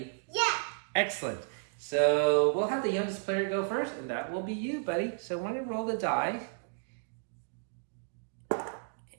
Yeah. Excellent. So we'll have the youngest player go first, and that will be you, buddy. So when you roll the die,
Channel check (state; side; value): silent; left; digital silence